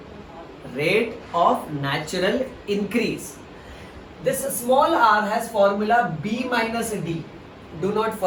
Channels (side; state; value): both; identical; correlation 1.00